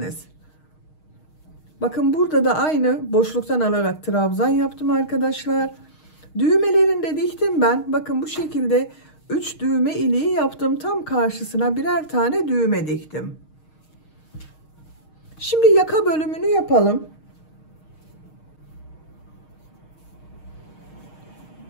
Bakın burada da aynı boşluktan alarak trabzan yaptım arkadaşlar. Düğmelerini de diktim ben. Bakın bu şekilde 3 düğme iliği yaptım. Tam karşısına birer tane düğme diktim. Şimdi yaka bölümünü yapalım.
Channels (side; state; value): right; late; 6.4 ms